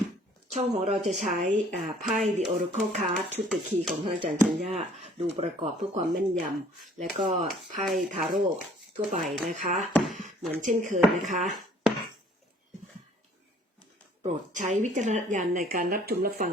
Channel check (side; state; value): both; normal; correlation 0.56